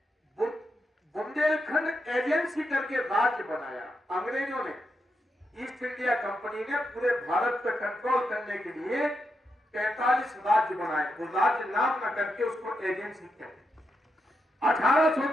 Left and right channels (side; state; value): both; normal; correlation 0.84